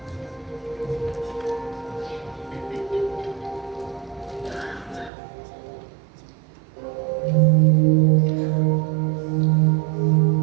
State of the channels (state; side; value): drops out; left; at 5.1 s